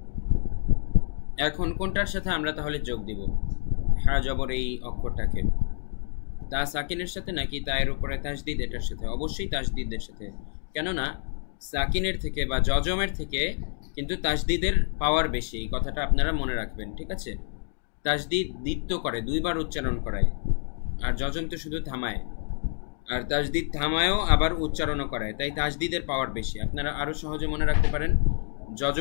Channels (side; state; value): right; silent; 60 dB below the other